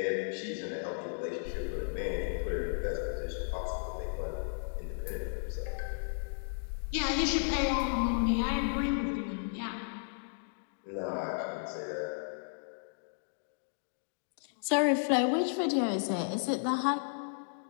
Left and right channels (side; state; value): right; silent; digital silence